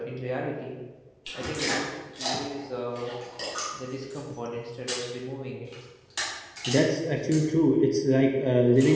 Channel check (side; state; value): both; identical; correlation 1.00